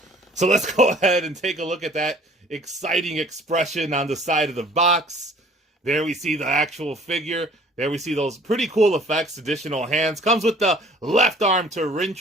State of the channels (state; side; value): normal; both; correlation 0.53